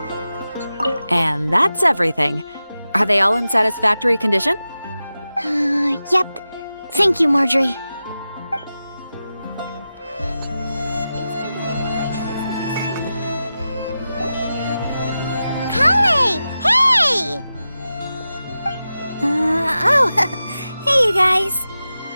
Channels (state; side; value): inverted; both; correlation -0.93